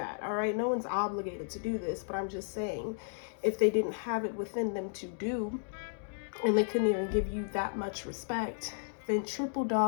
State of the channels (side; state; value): right; silent; digital silence